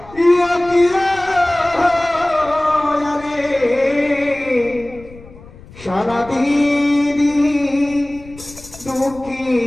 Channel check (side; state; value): left; noise; rumble, 20 dB below the sound